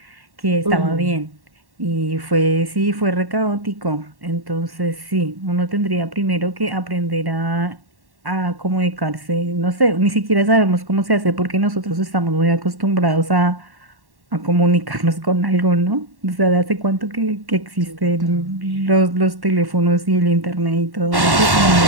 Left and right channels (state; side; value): late; left; 1.1 ms